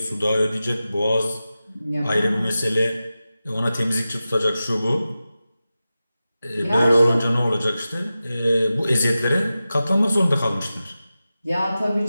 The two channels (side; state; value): both; inverted; correlation -0.94